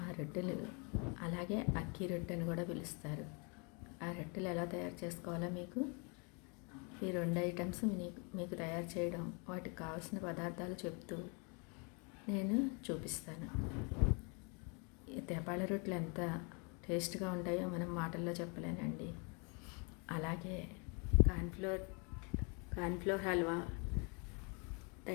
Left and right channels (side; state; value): right; quieter; 33.7 dB